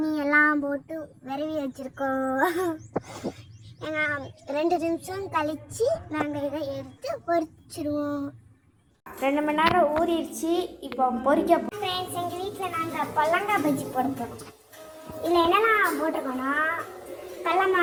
எல்லாம் போட்டு விரவி வச்சுருக்கோம். 2 நிமிஷம் கழித்து நாங்கள் இதை எடுத்து பொரிச்சிடுவோம். 2 மணி நேரம் ஊறிடுச்சு. இப்போ பொரிக்க ஃப்ரெண்ட்ஸ், எங்கள் வீட்டில் நாங்கள் பொல்லங்காய் பஜ்ஜி போட போகிறோம். இதில் என்னெல்லாம் போட்டிருக்கோன்னா கடல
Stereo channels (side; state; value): both; identical; correlation 1.00